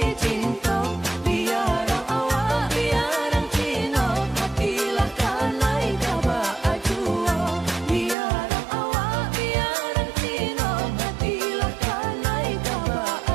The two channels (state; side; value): drops out; left; at 8.2 s